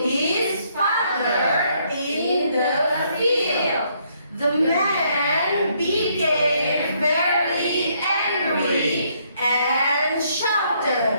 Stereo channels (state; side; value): inverted; both; correlation -0.70